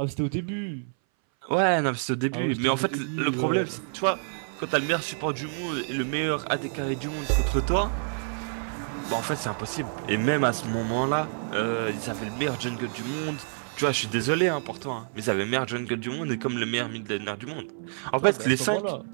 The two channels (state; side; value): silent; left; 60 dB below the other